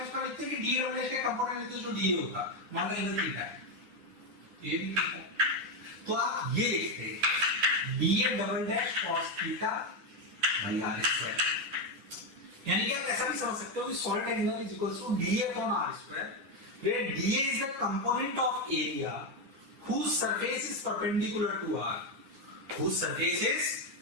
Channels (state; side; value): late; left; 10 ms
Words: इसको लिखते हैं कि डी डबल डैश का कंपोनेंट लेते जो डी होता, मान लो एंगल थीटा है, ये भी थीटा, तो आप ये लिखते हैं D double dash cos theta by R square. यानी कि आप ऐसा भी समझ सकते हो कि solid angle is equal to D A upon R square, where dA is the component of area whose surface is perpendicular to R, whose surface is